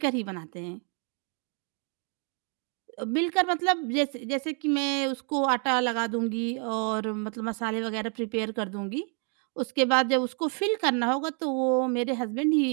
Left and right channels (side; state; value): left; quieter; 39.7 dB